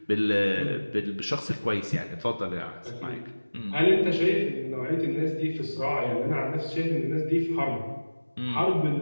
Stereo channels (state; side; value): inverted; both; correlation -1.00